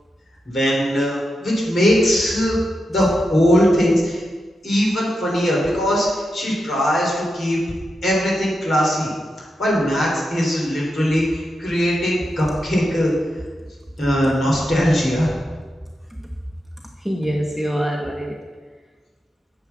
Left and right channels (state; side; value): normal; both; correlation 0.87